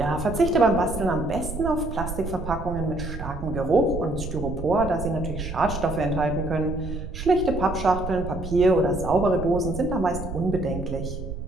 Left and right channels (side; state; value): right; noise; rumble, 7 dB below the sound